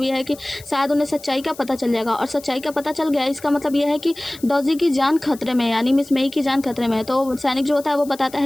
यह है कि शायद उन्हें सच्चाई का पता चल जाएगा और सच्चाई का पता चल गया इसका मतलब यह है कि डॉजी की जान खतरे में यानी मिस मई की जान खतरे में है। तो सैनिक जो होता है वो बताता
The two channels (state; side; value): noise; left; hiss, 20 dB below the sound